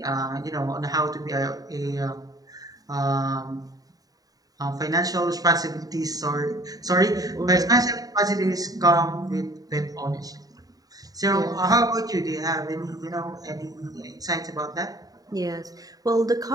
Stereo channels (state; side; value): late; left; 0.18 ms